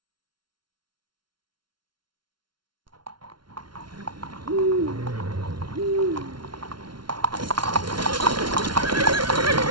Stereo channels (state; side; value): late; left; 0.72 ms